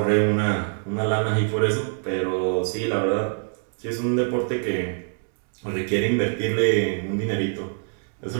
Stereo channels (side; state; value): left; silent; 56 dB below the other